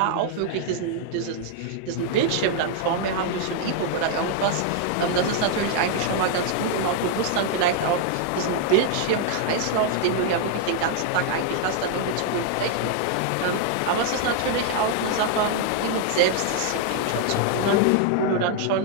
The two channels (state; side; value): different; both; correlation 0.00